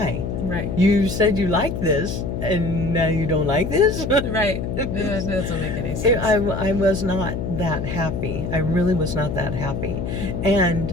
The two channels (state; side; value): noise; left; hum, 4 dB below the sound